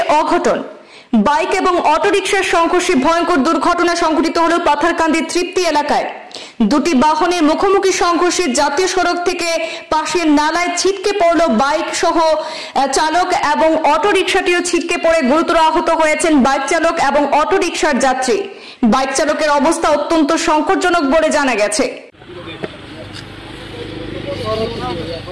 অঘটন। বাইক এবং অটোরিকশার সংঘর্ষে ভয়ঙ্কর দুর্ঘটনা সংঘটিত হল পাথারকান্দি তৃপ্তি এলাকায়। দুটি বাহনের মুখোমুখি সংঘর্ষে জাতীয় সড়ক থেকে পাশের নালায় ছিটকে পড়ল বাইক সহ চালক এবং অটোরিকশাটিও ছিটকে পড়ে গুরুতর আহত হয়েছেন বাইক চালক এবং অটোরিকশার যাত্রী। বাইক চালকের অবস্থা অত্যন্ত সংকটজনক বলে জানা গেছে।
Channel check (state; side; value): identical; both; correlation 1.00